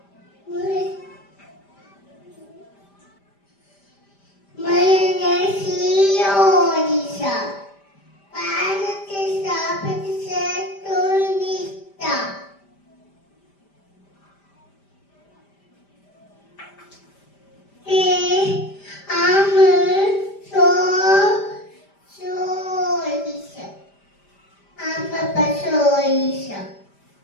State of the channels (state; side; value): late; right; 5.0 ms